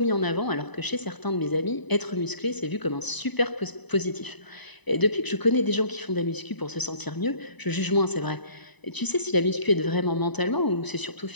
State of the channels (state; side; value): late; right; 1.0 ms